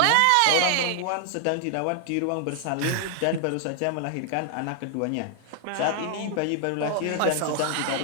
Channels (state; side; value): different; both; correlation 0.00